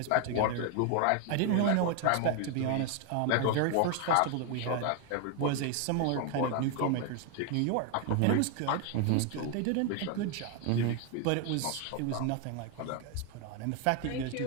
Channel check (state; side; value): different; both; correlation 0.01